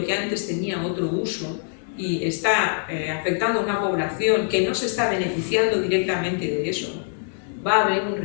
que antes tenía otro uso y está afectando a una población que no se está beneficiando directamente de eso, va a haber un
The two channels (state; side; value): silent; right; digital silence